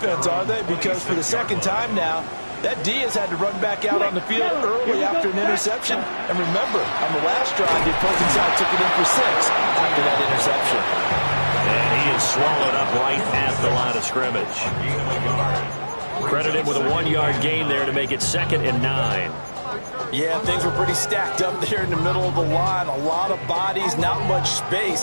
are they? Because for the 2nd time now, that Diaz had to run back out on the field early after an interception. And remember, on the last drive, the opposing side took it in for 6 after that interception. And he is swallowed up right at the line of scrimmage. Credit him with a 1-yard gain there to make it 2nd and 9. Yeah, things were pretty stacked up there in the middle of the line. A lot of bodies, not much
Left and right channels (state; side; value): inverted; both; correlation -1.00